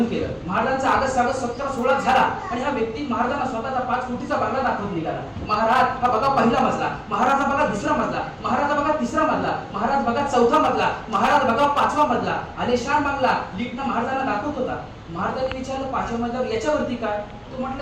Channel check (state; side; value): identical; both; correlation 1.00